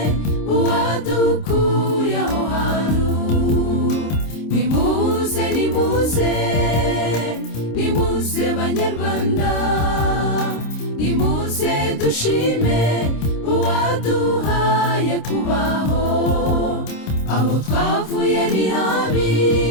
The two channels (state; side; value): late; right; 26 ms